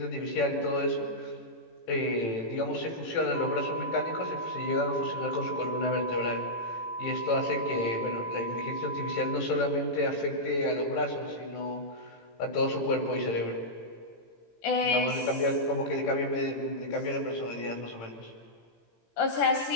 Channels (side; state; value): right; late; 18 ms